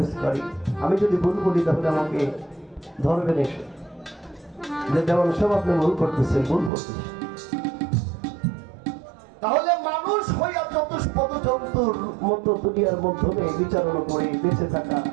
কারি। আমি যদি ভুল বলি তাহলে আমাকে ধরবেন এসে, যে যেমন সব আপনি ভুল করতেছেন, ভুল করতেছেন। তাহলে মানুষ হইয়া চতুষ্পদ জন্তুর মতো দুনিয়ার মাধ্যমে বিচারণা করে বেঁচে থাকা,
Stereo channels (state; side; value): drops out; left; at 6.7 s